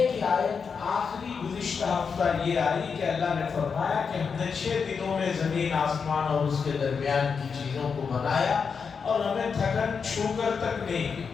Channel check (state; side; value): quieter; right; 5.8 dB